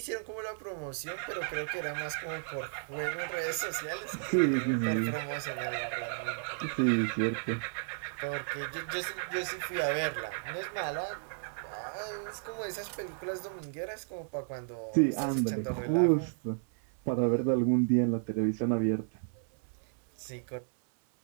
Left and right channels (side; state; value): left; silent; 56 dB below the other